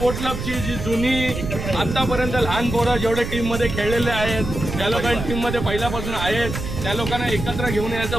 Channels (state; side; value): noise; right; rumble, 5 dB below the sound